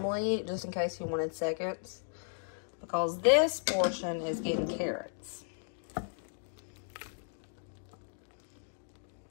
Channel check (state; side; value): silent; right; digital silence